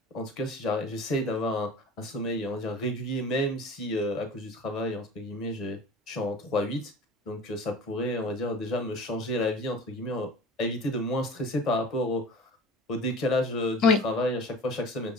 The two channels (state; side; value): normal; both; correlation 0.40